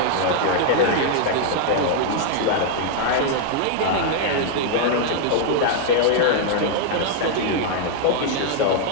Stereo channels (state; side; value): different; both; correlation -0.01